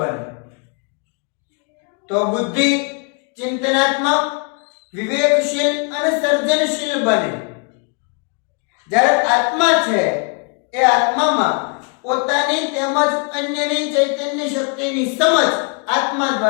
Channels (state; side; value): quieter; right; 36.4 dB